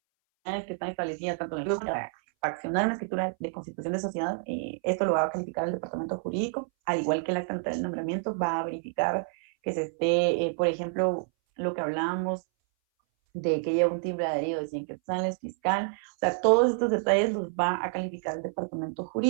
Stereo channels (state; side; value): silent; left; 59 dB below the other